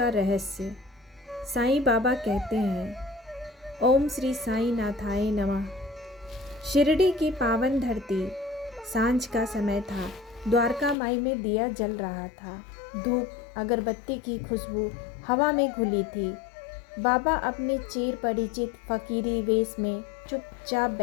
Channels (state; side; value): drops out; right; at 11.0 s